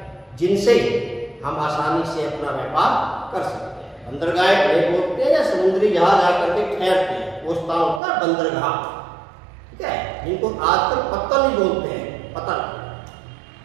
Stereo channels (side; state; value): left; drops out; at 8.0 s